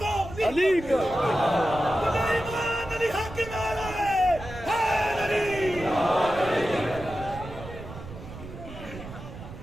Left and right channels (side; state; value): right; noise; rumble, 13 dB below the sound